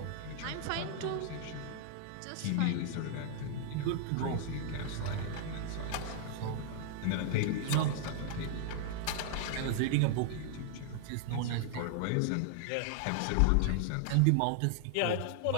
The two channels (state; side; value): different; both; correlation 0.00